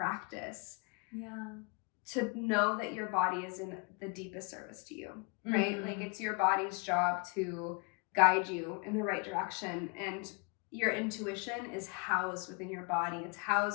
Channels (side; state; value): right; quieter; 32.9 dB